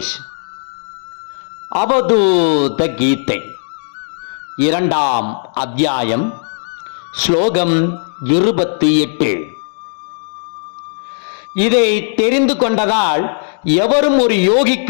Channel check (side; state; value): right; silent; digital silence